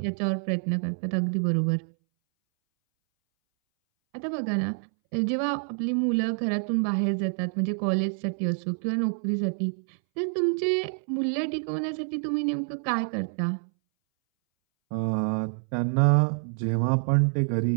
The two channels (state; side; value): silent; left; 60 dB below the other